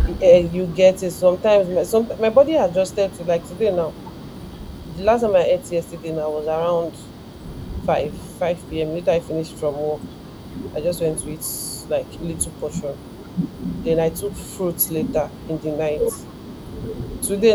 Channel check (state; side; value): identical; both; correlation 1.00